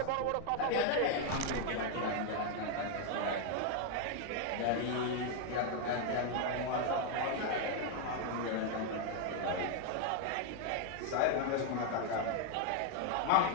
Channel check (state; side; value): different; both; correlation 0.00